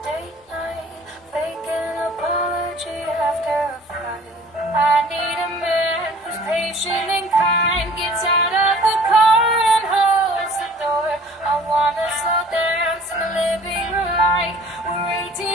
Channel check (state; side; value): normal; both; correlation 0.50